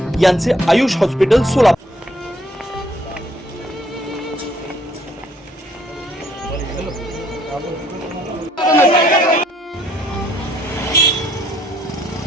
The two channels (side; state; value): both; normal; correlation 0.65